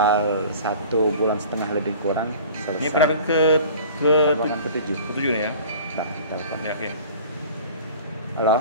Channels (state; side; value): inverted; both; correlation -0.44